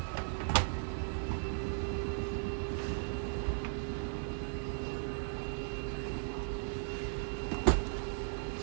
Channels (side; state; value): left; silent; digital silence